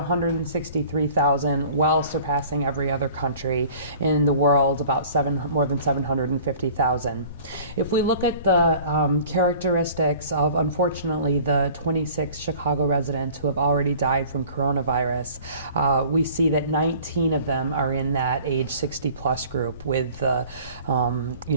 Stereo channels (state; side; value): inverted; both; correlation -0.48